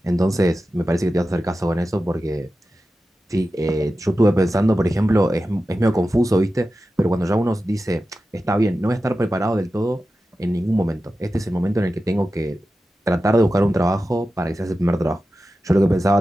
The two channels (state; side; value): normal; both; correlation 0.93